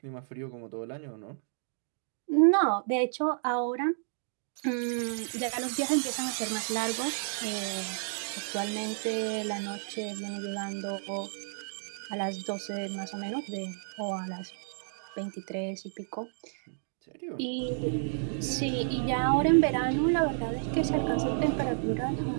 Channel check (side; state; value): left; silent; digital silence